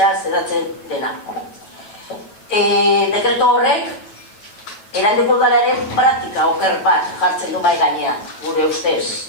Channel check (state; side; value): late; right; 9.2 ms